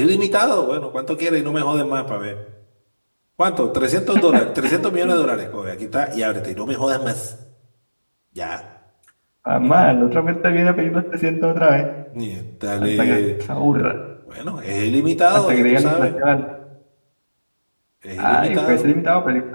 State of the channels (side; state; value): both; inverted; correlation -1.00